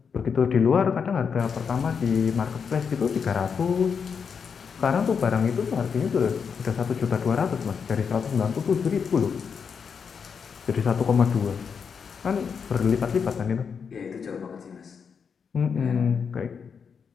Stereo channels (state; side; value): quieter; right; 6.3 dB